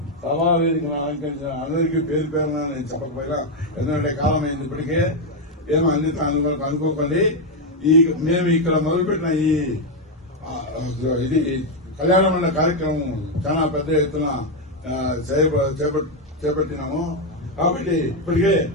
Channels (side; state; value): both; normal; correlation 0.04